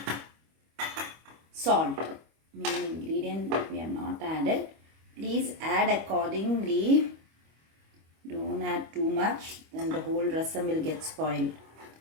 salt. Main ingredient we have not added. Please add accordingly. Don't add too much, then the whole rasam will get spoiled.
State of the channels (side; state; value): left; late; 25 ms